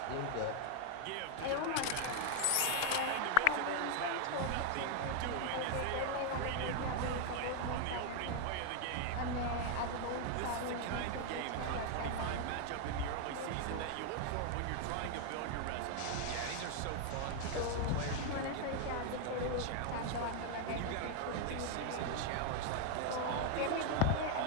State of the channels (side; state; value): both; different; correlation 0.00